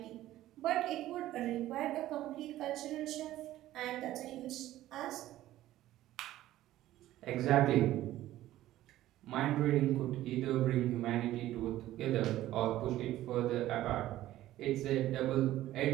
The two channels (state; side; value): quieter; left; 14.5 dB